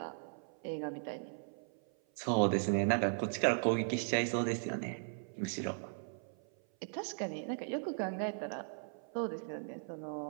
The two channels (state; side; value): silent; left; 53 dB below the other